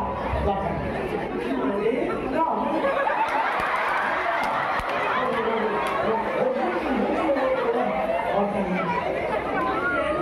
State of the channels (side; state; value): both; identical; correlation 1.00